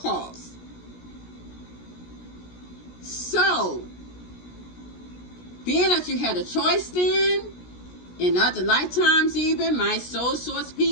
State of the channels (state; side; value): late; right; 17 ms